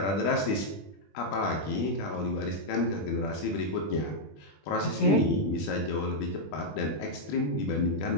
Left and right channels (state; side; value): late; right; 20 ms